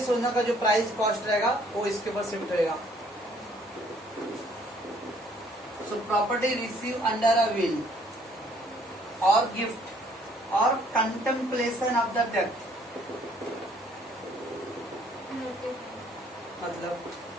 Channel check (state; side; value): normal; both; correlation 0.61